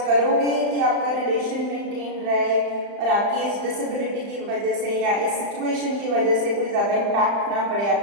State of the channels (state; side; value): late; left; 35 ms